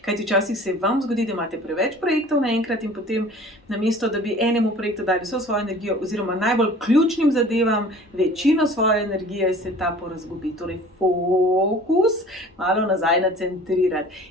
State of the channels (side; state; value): both; normal; correlation 0.46